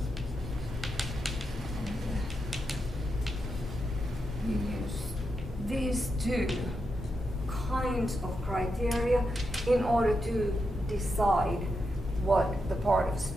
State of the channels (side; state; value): both; normal; correlation 0.85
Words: We use these two kinds of criteria in order to decide what the part of